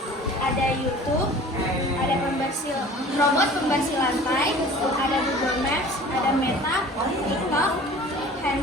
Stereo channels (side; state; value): both; normal; correlation 0.45